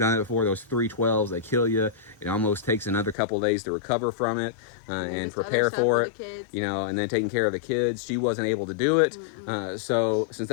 it before, those 312s, they kill you. It almost takes another couple of days to recover from it and prepare for it, and then taking care of the kids. She wasn't able to do it. So since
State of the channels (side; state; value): right; drops out; at 3.2 s